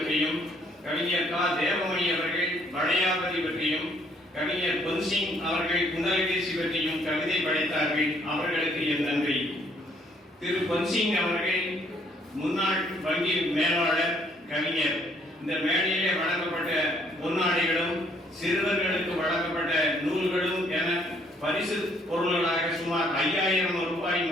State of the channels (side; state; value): both; normal; correlation 0.65